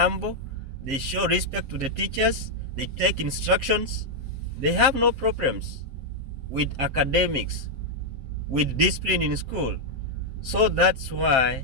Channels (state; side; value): late; left; 7.6 ms